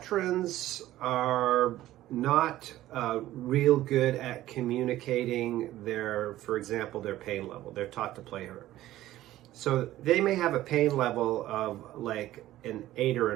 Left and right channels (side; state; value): left; quieter; 14.8 dB